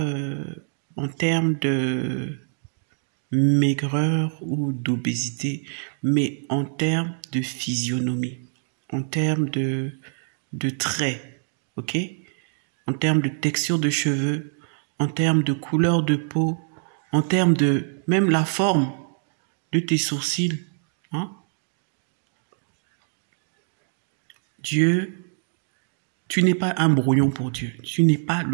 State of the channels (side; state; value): left; silent; digital silence